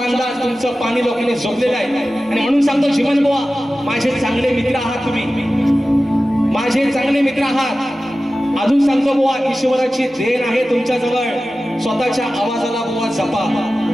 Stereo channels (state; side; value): normal; both; correlation 0.95